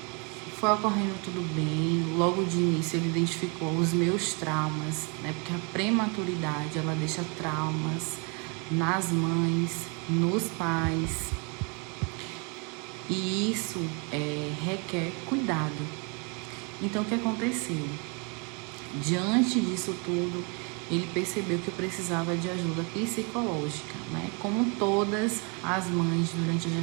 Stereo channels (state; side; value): quieter; left; 33.5 dB